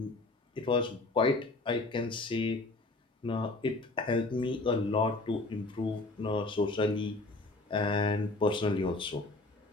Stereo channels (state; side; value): quieter; right; 3.1 dB